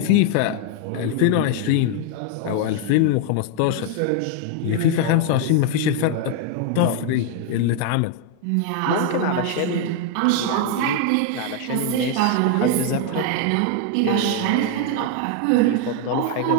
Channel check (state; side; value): different; both; correlation 0.00